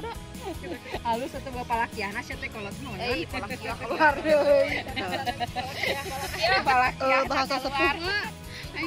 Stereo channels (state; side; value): identical; both; correlation 1.00